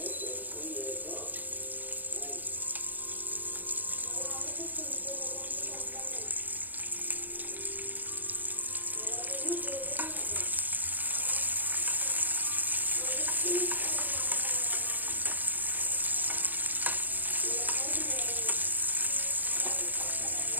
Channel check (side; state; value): left; late; 0.089 ms